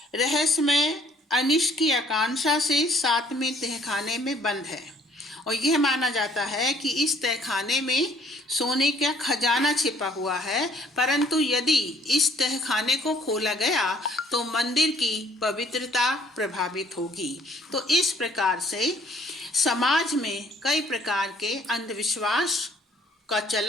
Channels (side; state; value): both; normal; correlation 0.60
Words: रहस्यमय अनिष्ट की आकांक्षा से 7वें तहखाने में बंद है और यह माना जाता है कि इस तहखाने में सोने का खजाना छिपा हुआ है, परंतु यदि इस तहखाने को खोला गया तो मंदिर की पवित्रता प्रभावित होगी। तो इस प्रकार से समाज में कई प्रकार के अंधविश्वास का